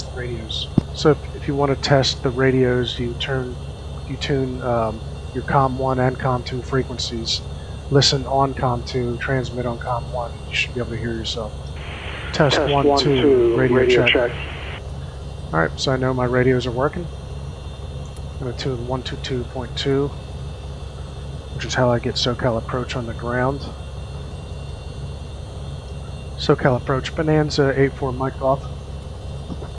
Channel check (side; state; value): both; identical; correlation 1.00